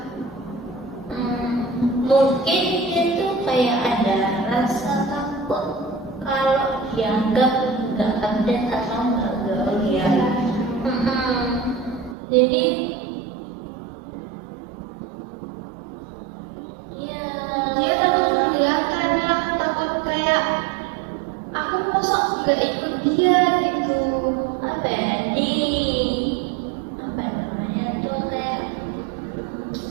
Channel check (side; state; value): left; drops out; at 12.2 s